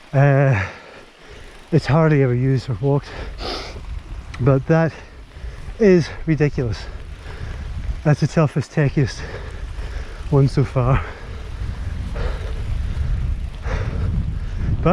It's hardly ever used or walked, but that is ridiculous. That's the toughest, techiest one so far.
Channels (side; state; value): both; identical; correlation 1.00